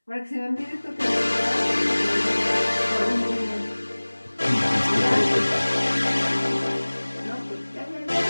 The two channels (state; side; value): inverted; both; correlation -1.00